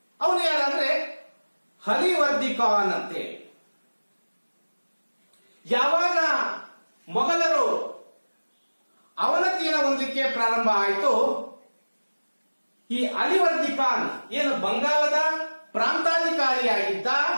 ಅವನು ಯಾರಂದ್ರೆ ಹಲಿವರ್ದಿ ಖಾನ್ ಅಂತೇಳಿ. ಯಾವಾಗ ಮೊಘಲರು ಅವನತಿಯನ್ನು ಹೊಂದಲಿಕ್ಕೆ ಪ್ರಾರಂಭ ಆಯಿತು, ಈ ಅಲಿವರ್ದಿ ಖಾನ್ ಏನು ಬಂಗಾಳದ ಪ್ರಾಂತಾಧಿಕಾರಿಯಾಗಿದ್ದ,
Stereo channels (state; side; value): inverted; both; correlation -1.00